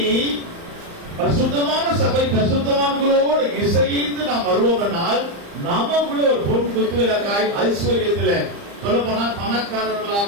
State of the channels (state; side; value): late; left; 35 ms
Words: பரிசுத்தமான சபை பரிசுத்தவான்களோடு இசைந்து நாம் வருவோம்னால் நமக்குள்ள ஒரு பொன் குத்துவிளக்காய் ஐஸ்வர்யத்துல சொல்ல போனா